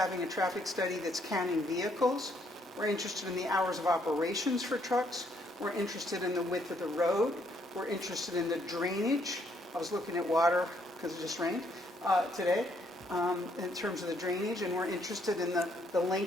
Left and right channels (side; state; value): both; normal; correlation 0.70